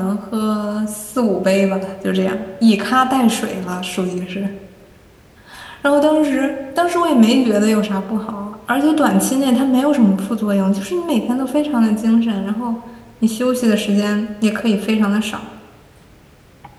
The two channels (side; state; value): both; identical; correlation 1.00